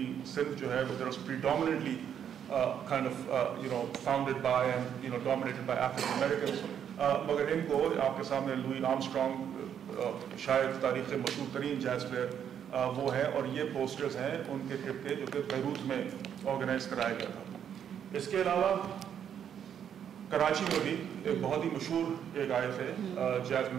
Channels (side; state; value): left; quieter; 8.8 dB